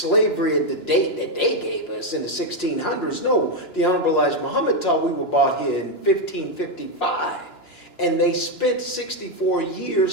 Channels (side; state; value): right; late; 2.9 ms